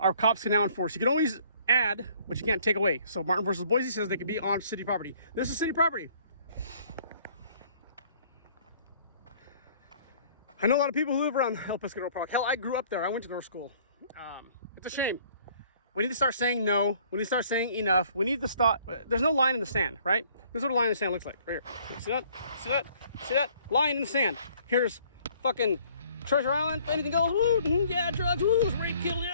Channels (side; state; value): both; inverted; correlation -0.58